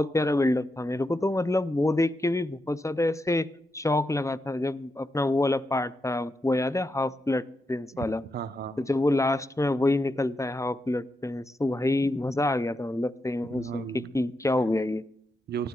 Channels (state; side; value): normal; both; correlation 0.85